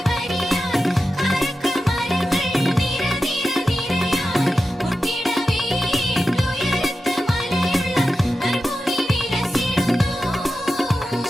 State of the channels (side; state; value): both; normal; correlation 0.92